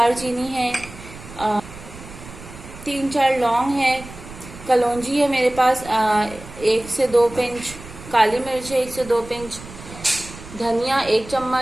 है, 3-4 लौंग है, कलौंजी है मेरे पास 1 से 2 पिंच, काली मिर्च है 1 से 2 पिंच, धनिया 1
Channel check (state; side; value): noise; right; rumble, 16 dB below the sound